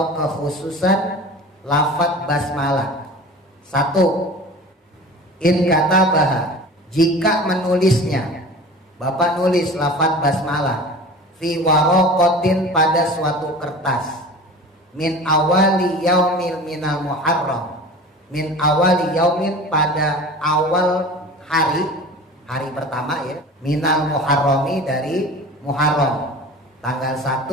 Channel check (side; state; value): both; normal; correlation 0.38